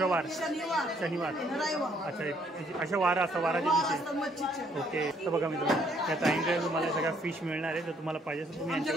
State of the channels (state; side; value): normal; both; correlation 0.67